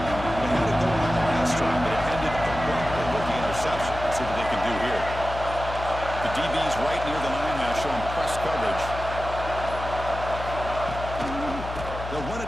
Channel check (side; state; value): left; noise; hum, 8 dB below the sound